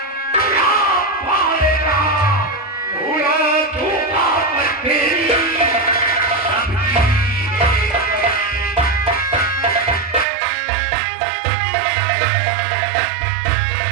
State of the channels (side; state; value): left; drops out; at 10.2 s